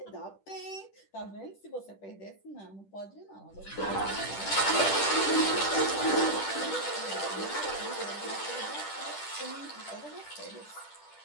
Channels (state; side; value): late; right; 10 ms